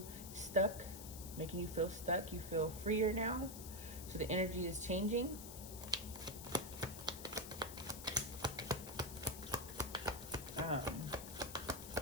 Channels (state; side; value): noise; left; hiss, 11 dB below the sound